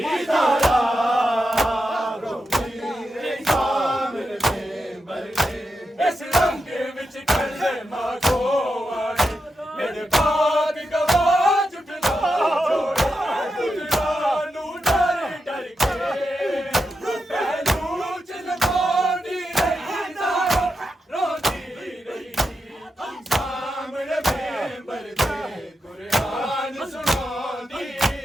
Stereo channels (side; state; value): both; normal; correlation 0.87